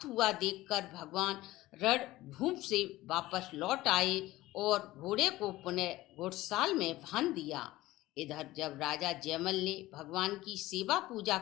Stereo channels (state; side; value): quieter; right; 17.4 dB